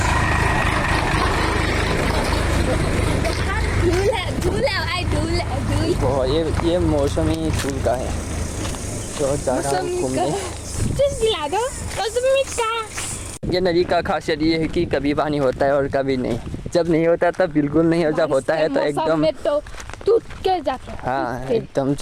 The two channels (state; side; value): identical; both; correlation 1.00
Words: ये मौसमी फूल का है तो जा रहा हूँ घूमने। ये नदी का खासियत ये है कि कभी पानी होता है और कभी नहीं। जब नहीं होता तब बिल्कुल नहीं, और जब होता है तो एकदम टूट के जाता है। हाँ एकदम,